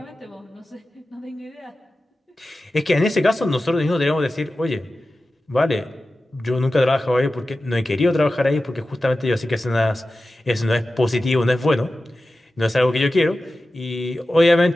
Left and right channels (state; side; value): normal; both; correlation 0.94